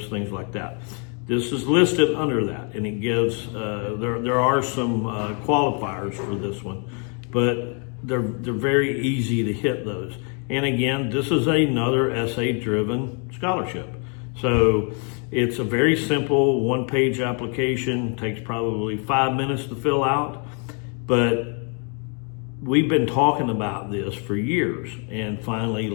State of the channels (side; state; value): right; quieter; 38.4 dB